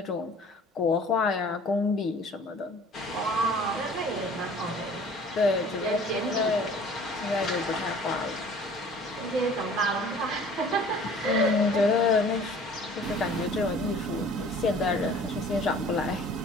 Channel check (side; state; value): both; normal; correlation 0.49